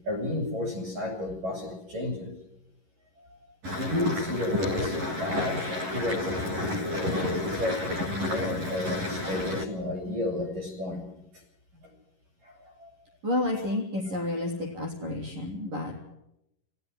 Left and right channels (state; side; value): late; left; 11 ms